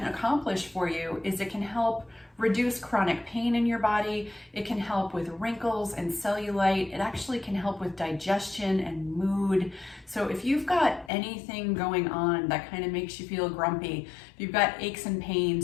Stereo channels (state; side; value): drops out; right; at 11.1 s